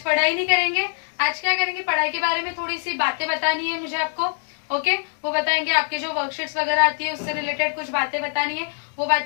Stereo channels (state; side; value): silent; right; 58 dB below the other